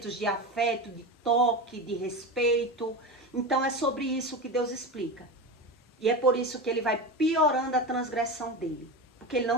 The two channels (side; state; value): both; normal; correlation 0.23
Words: de afeto, de toque, de respeito. Então é sobre isso que Deus explica. E é por isso que ele vai piorando a transgressão dele. Porque ele